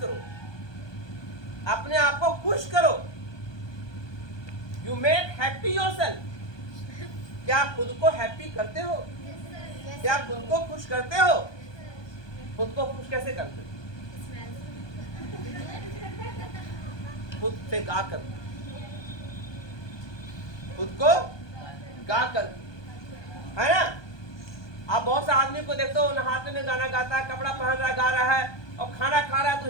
करो, अपने आप को खुश करो। You make happy yourself. क्या खुद को हैप्पी करते हो? क्या खुद को खुश करते हो? खुद को खुश कैसे करते हो? खुद से गा कर, खुद को गा कर, है ना? आप बहुत से आदमी को देखते हो, नहाते में गाना गाता है, कपड़ा पहन रहा गा रहा है, और खाना खा रहा है तो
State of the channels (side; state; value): right; late; 1.2 ms